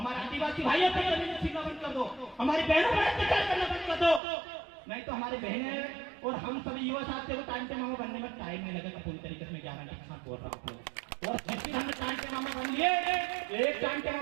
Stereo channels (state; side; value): drops out; left; at 4.2 s